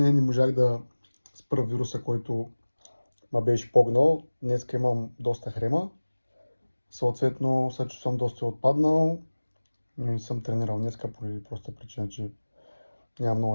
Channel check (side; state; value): both; inverted; correlation -1.00